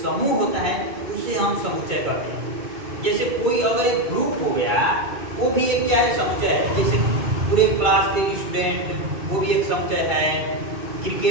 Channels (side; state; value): left; late; 2.3 ms